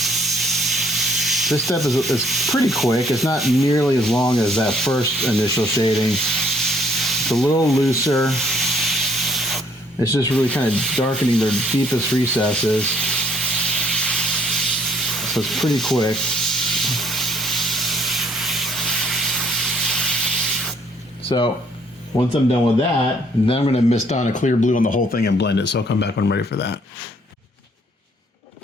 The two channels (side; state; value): both; normal; correlation 0.63